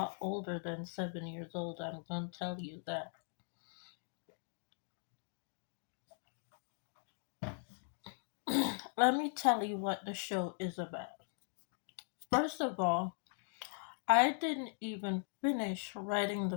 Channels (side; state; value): right; silent; 51 dB below the other